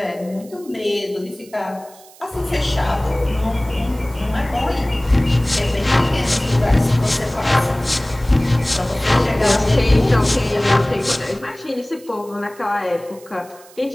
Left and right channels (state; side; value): noise; right; hiss, 24 dB below the sound